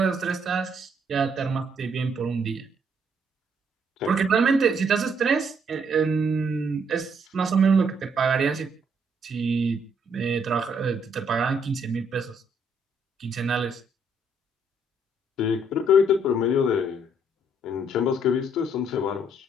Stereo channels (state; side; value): normal; both; correlation 0.70